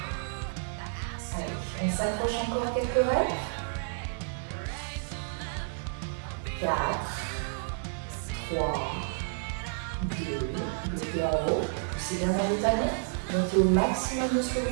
Allez, on s'accroche encore quelques reps. 4, 3, 2, bloquez en haut, poussez bien vers le talon, montez au maximum de ce que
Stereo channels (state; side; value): silent; left; 56 dB below the other